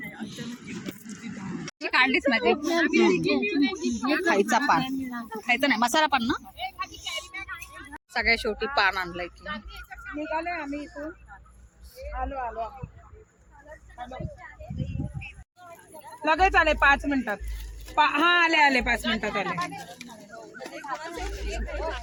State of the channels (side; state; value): both; identical; correlation 1.00